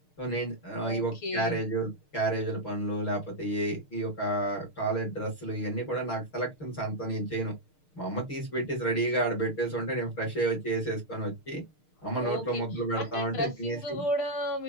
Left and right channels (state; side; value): late; right; 6.6 ms